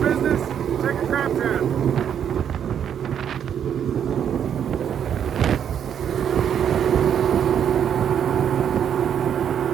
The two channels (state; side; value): quieter; left; 8.8 dB